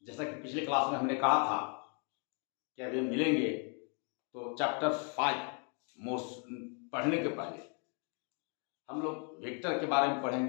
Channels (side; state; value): right; quieter; 38.6 dB